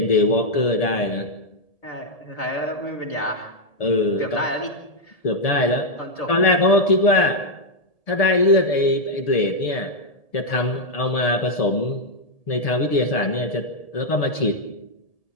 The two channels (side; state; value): right; late; 1.7 ms